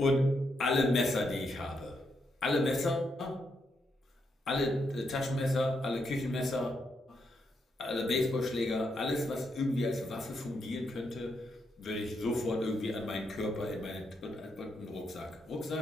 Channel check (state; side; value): normal; both; correlation 0.80